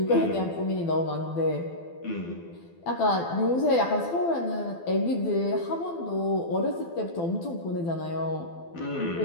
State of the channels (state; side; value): late; right; 12 ms